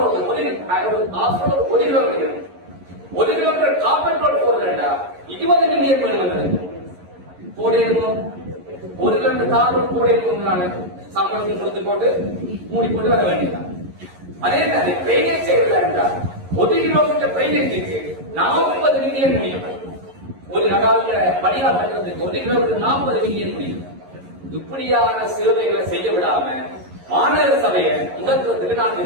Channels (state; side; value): late; left; 11 ms